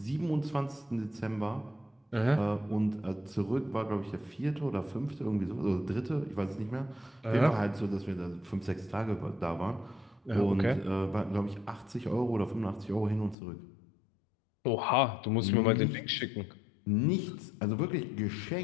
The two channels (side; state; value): right; drops out; at 13.4 s